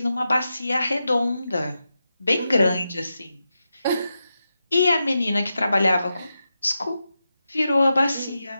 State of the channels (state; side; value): inverted; both; correlation -0.89